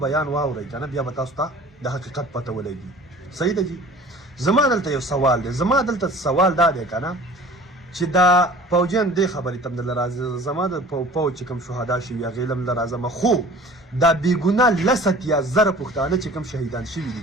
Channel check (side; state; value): both; normal; correlation 0.45